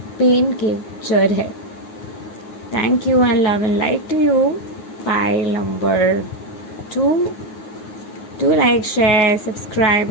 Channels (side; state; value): right; late; 9.4 ms